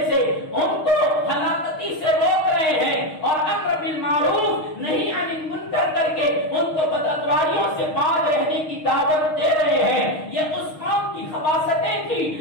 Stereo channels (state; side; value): late; right; 6.4 ms